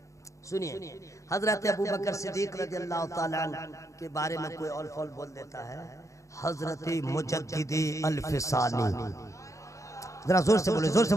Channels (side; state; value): right; late; 0.15 ms